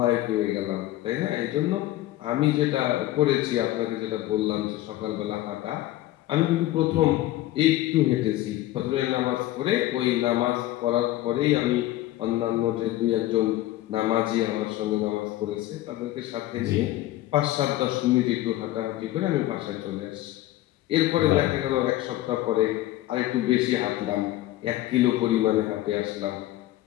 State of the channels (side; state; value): right; quieter; 15.4 dB